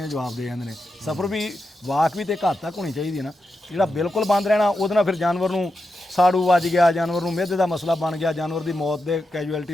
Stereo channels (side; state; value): both; normal; correlation 0.88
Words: ਦੇ ਜਵਾਬ ਦੇ ਜਾਂਦੇ ਨੇ। ਸਫਰ ਵੀ ਵਾਕ ਵੀ ਤੇ ਘੱਟ ਤੱਕ ਹੋਣੀ ਚਾਹੀਦੀ ਹੈ ਨਾ। ਜਿਹੜਾ ਬਿਲਕੁਲ ਬੰਦ ਰਹਿਣਾ, ਉਹਦੇ ਨਾਲ ਫਿਰ ਜਾਨਵਰ ਨੂੰ ਸਾੜੂ ਵੱਜ ਗਿਆ, ਜਾਨਵਰ ਨੂੰ ਮਿਹਦੇ ਦਾ ਮਸਲਾ ਬਣ ਗਿਆ, ਜਾਨਵਰ ਦੀ ਮੌਤ ਦੇ